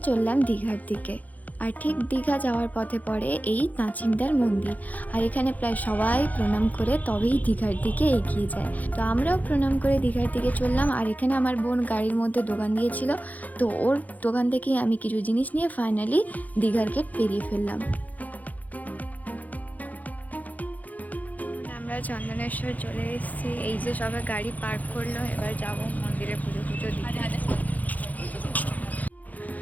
চললাম দীঘার দিকে। আর ঠিক দীঘা যাওয়ার পথে পড়ে এই নাচিন্দার মন্দির। আর এখানে প্রায় সবাই প্রণাম করে তবেই দীঘার দিকে এগিয়ে যায়। তো আমরাও প্রণাম করে দীঘার দিকে চললাম। আর এখানে আমার বোন গাড়ির মধ্যে দোকান দিয়েছিল, তো ওর দোকান থেকেই আমি কিছু জিনিস নিয়ে ফাইনালি দীঘার গেট পেরিয়ে ফেললাম। আমরা চন্দনেশ্বর চলে এসেছি। এই যে সবাই গাড়ি পার্ক করলো, এবার যাব মন্দিরে পুজো পুজো দিতে।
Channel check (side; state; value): right; late; 0.079 ms